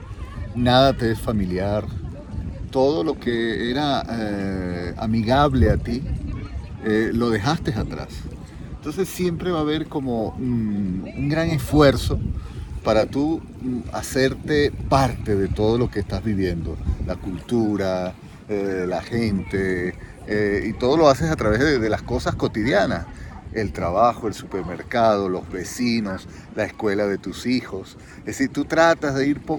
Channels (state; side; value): identical; both; correlation 1.00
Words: nada te es familiar, todo lo que era amigable a ti, lo dejaste atrás. Entonces siempre va a haber como un gran esfuerzo para tú hacerte parte de todo lo que estás viviendo, la cultura, la gente, y todo lo haces a través de las cosas cotidianas, el trabajo, el supermercado, los vecinos, la escuela de tus hijos. Es decir, tú tratas de ir